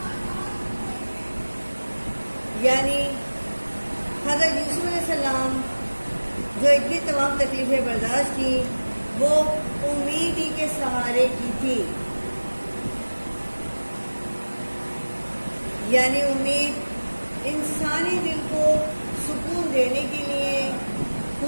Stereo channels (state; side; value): inverted; both; correlation -1.00